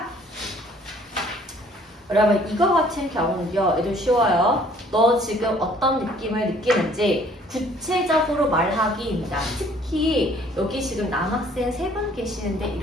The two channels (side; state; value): both; normal; correlation 0.58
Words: 여러분 이거 같은 경우는요. 애들 쉬워요. 너 지금 어떤 느낌을 느끼는지 구체적으로 말하기입니다. 특히 여기 지금 남학생 3분 계시는데